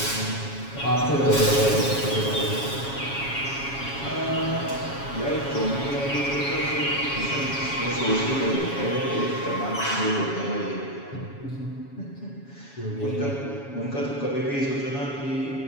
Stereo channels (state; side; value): late; right; 7.2 ms